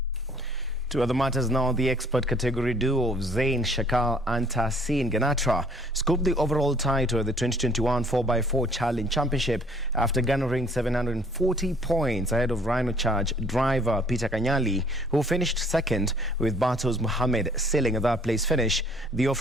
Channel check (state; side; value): normal; both; correlation 0.58